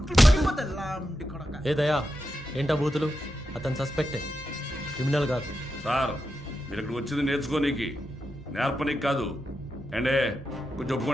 ఏ దయా, ఏంటా బూతులు? అతను సస్పెక్టే, క్రిమినల్ కాదు. సార్ మీరు ఇక్కడ వచ్చింది నేర్చుకోనీకి, నేర్పనీకి కాదు. ఏండే కొంచెం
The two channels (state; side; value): normal; both; correlation 0.88